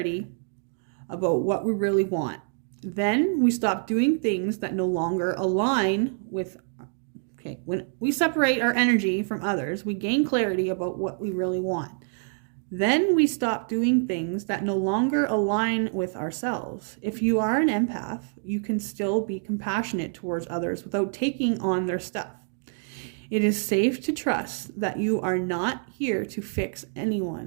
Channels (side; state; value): left; silent; 61 dB below the other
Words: about what we really want. Then we stop doing things that no longer align with, when we separate our energy from others, we gain clarity about what we really want. Then we stop doing things that no longer align with ourselves. If you are an empath, you can still be compassionate towards others without taking on their stuff. It is safe to trust that you are not here to fix